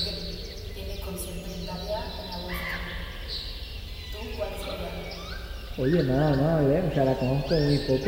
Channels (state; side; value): identical; both; correlation 1.00